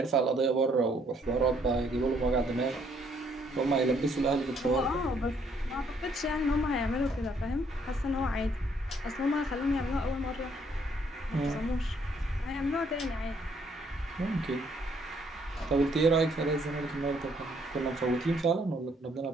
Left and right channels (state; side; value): normal; both; correlation 0.67